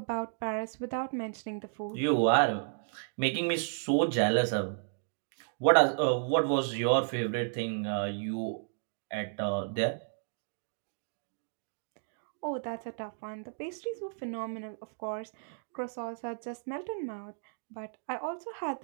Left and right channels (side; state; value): left; silent; digital silence